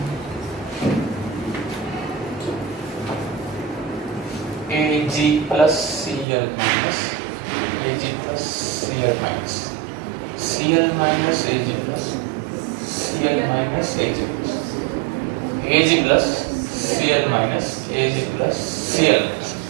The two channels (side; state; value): left; drops out; at 6.2 s